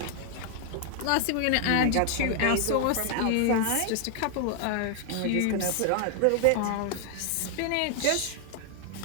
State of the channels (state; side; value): different; both; correlation 0.00